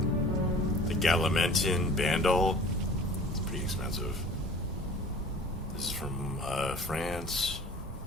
The Galamentin Bandol. It's pretty expensive. This is from France.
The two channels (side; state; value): both; normal; correlation 0.45